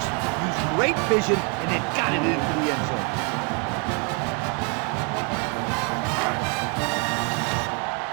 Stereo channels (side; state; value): left; quieter; 33.8 dB